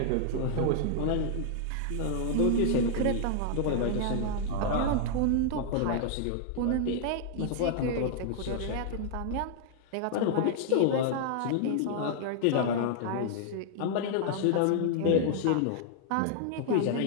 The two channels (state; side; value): different; both; correlation -0.01